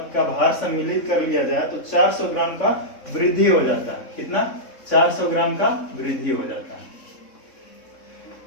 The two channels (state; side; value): late; right; 3.6 ms